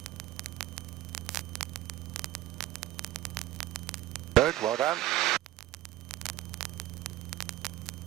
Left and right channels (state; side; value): quieter; left; 15.9 dB